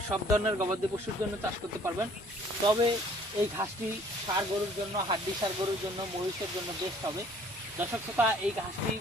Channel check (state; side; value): normal; both; correlation 0.56